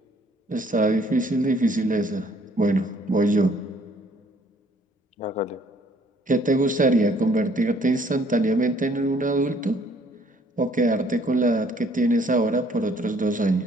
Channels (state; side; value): normal; both; correlation 0.61